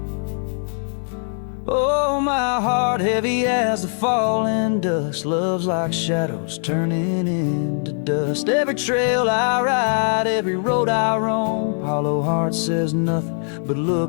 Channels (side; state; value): right; silent; digital silence